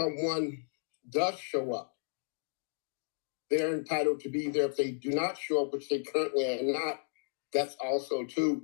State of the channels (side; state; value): right; silent; digital silence